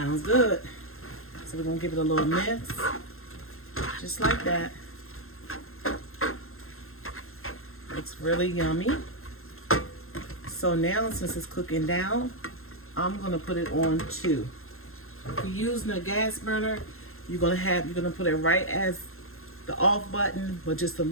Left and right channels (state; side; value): late; right; 0.61 ms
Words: good. So we're going to give it a little mix. Just like that. Looks really yummy. So now, since it's cooking down, I'm going to put it on 2. If you're using a gas burner, you're going to put it right as the off button, but just a